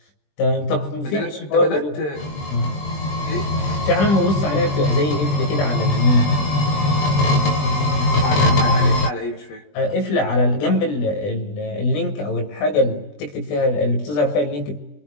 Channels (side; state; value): right; late; 20 ms